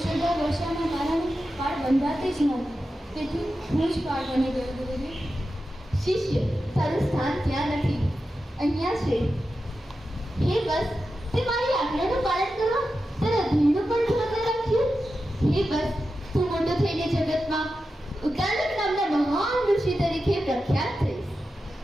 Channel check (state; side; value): normal; both; correlation 0.91